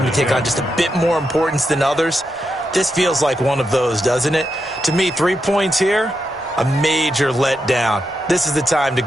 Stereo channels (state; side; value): normal; both; correlation 0.85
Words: to take on just a bit more importance than others? This feels like one of those, doesn't it? To me, 3 points here, a major letdown. This is the time to